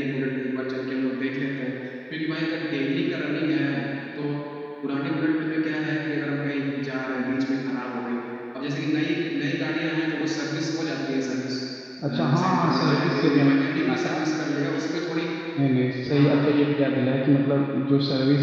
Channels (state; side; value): identical; both; correlation 1.00